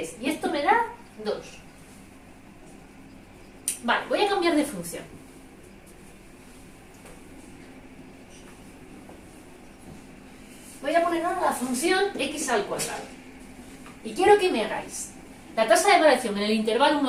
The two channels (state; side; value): identical; both; correlation 1.00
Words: Y esto me da 2. Vale, voy a cambiar de función. Voy a poner ahora la función x al cuadrado. Y quiero que me hagáis la tasa de variación en el intervalo